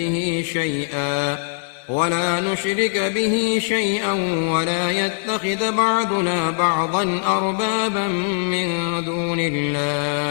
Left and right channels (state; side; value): silent; right; 65 dB below the other